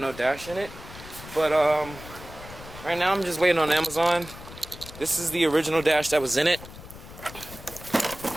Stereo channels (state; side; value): noise; left; rumble, 15 dB below the sound